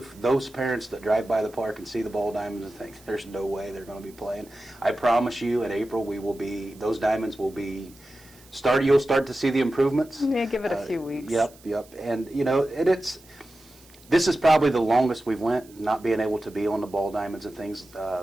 parents that drive by the park and see the ball diamonds and think there's no way they're going to be playing, I promise you, in April those diamonds will be you'll start to see the improvements. Yeah, give it a few weeks. Yep. And, you know, this is probably the longest we've went, not being able to be on the ball diamonds and things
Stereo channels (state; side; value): noise; right; hiss, 25 dB below the sound